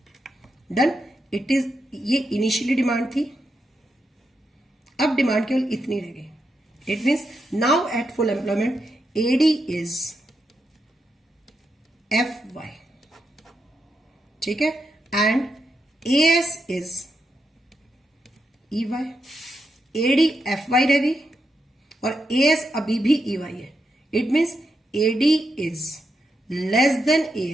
डन. इट इज, ये इनिशियली डिमांड थी, अब डिमांड केवल इतनी रह गई. It means now at full employment AD is FY, ठीक है, and AS is EY. AD FY रह गई और AS अभी भी EY है. It means AD is less than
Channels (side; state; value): both; normal; correlation 0.84